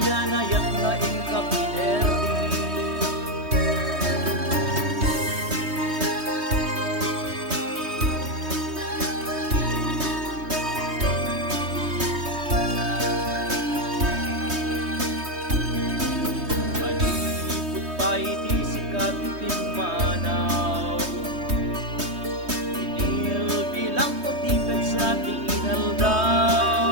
na inkapinerdi. Malipot pa'y di sikat itimanaw, sa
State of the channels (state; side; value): late; left; 3.2 ms